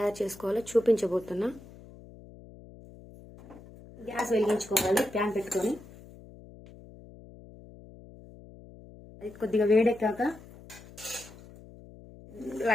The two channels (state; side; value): noise; left; hum, 20 dB below the sound